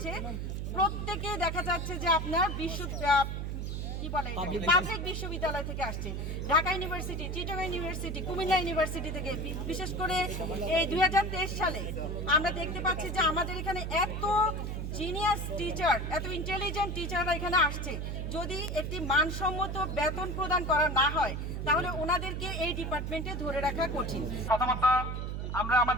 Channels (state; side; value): noise; right; hum, 3 dB below the sound